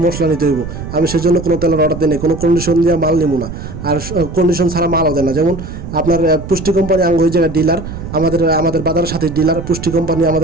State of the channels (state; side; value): noise; right; rumble, 9 dB below the sound